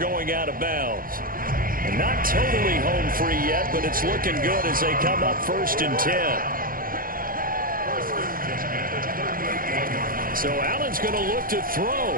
out of bounds. And not totally home free yet, but it's looking good as they come up 1st and 10. So Allen's going to look to throw.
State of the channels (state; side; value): late; left; 0.41 ms